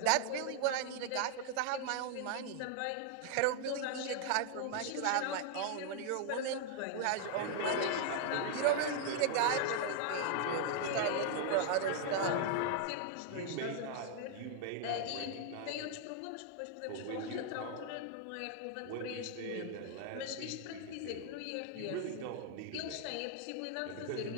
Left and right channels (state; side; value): different; both; correlation 0.00